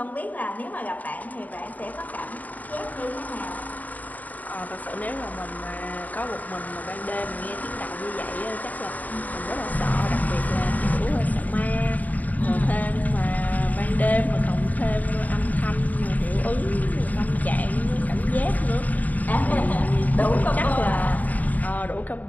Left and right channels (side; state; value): right; late; 0.077 ms